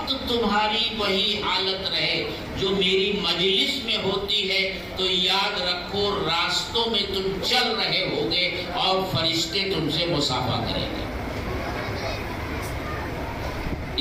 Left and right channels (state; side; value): identical; both; correlation 1.00